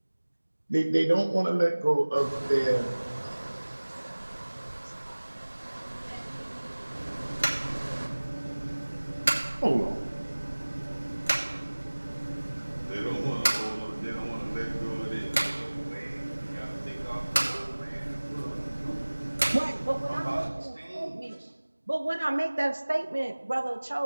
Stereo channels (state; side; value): inverted; both; correlation -1.00